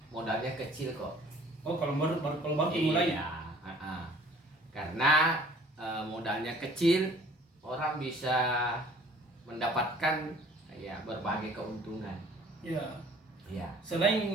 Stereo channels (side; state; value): both; normal; correlation 0.52